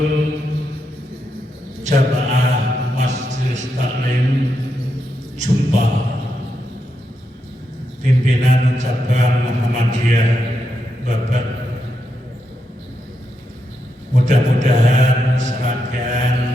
jamaah Majelis Taklim Jumpa pimpinan cabang Muhammadiyah Bapak, mudah-mudahan serangkaian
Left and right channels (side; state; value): both; normal; correlation 0.84